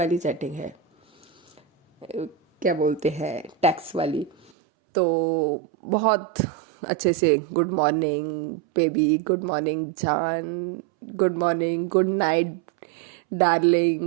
चैटिंग है, क्या बोलते हैं, टैक्स वाली। तो बहुत अच्छे से good morning baby, good morning जान, good morning, good night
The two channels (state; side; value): drops out; left; at 4.5 s